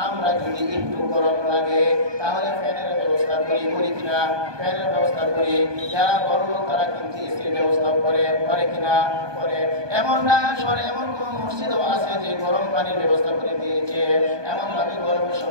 আমরা যদি একটু গরম লাগে তাহলে ফ্যানের ব্যবস্থা করি কিনা ফ্যানের ব্যবস্থা করি যারা বড় লোক তারা কিন্তু এসির ব্যবস্থা করে কিনা করে এমন না সরে এমন কোন মসজিদও আছে যে গরম পানির ব্যবস্থা করে দিয়েছে এমন ভাবে গরমের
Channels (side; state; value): left; late; 1.2 ms